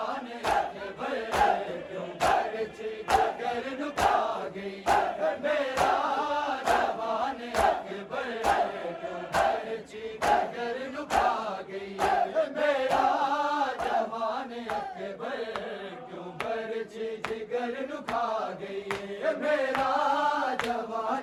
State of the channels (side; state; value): both; identical; correlation 1.00